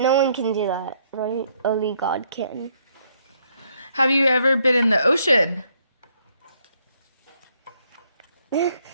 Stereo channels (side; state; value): both; inverted; correlation -0.70